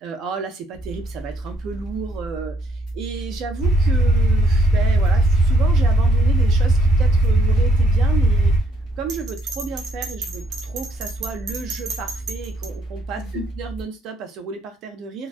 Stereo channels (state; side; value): normal; both; correlation 0.71